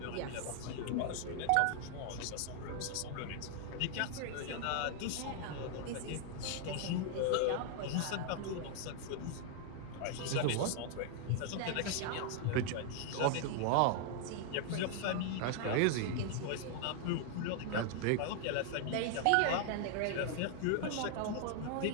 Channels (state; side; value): different; both; correlation 0.00